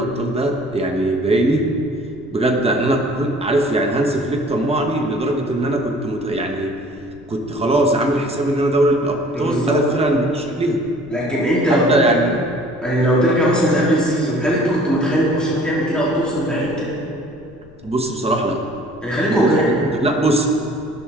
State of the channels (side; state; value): left; noise; rumble, 24 dB below the sound